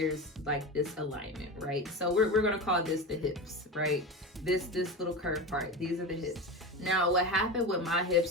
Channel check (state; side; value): normal; both; correlation 0.24